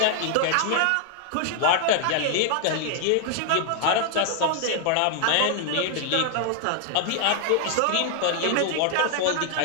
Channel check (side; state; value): both; different; correlation 0.00